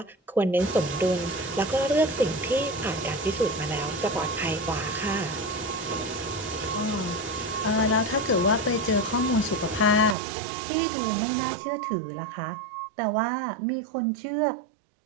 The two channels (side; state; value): left; drops out; at 10.2 s